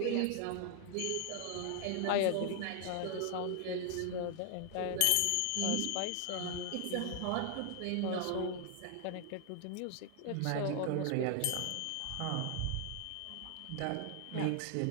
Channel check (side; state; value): both; different; correlation 0.00